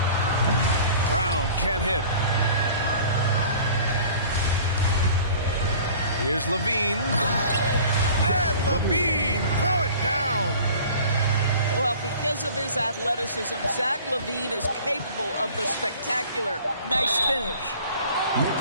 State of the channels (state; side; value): inverted; both; correlation -0.46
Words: Brown can't hit. Here's Levine. And Levine throw it down. Well, because of his athleticism, Zach LaVine is capable of the spectacular. Nice finish. Next